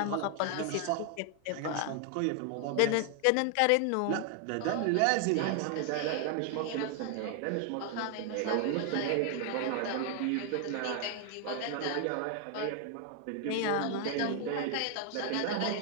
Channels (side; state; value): both; different; correlation 0.00